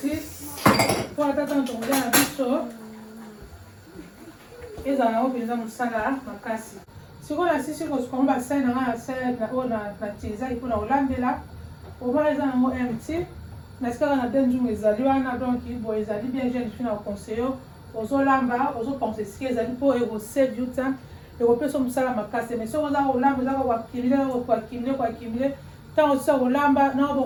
mpo ata ntango tokolia na biso ezala nango mpenza mosala makasi. Sikoyo nasisi kosuka ngo basani na nga oyo natizaki mpona kolambela omona eza nango mt nasikaka na benjungu ezali wana donc boye ezali bien jeune fille na conseiller ozolamba ozopense esika ezali mpo ekosave you time ekopesa mosala makasi. Mais soki oza kolamba ezaka koakimile ntango osisa kolamba nao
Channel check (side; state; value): both; identical; correlation 1.00